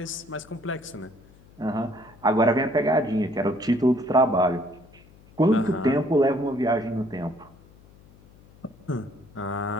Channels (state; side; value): noise; left; hum, 25 dB below the sound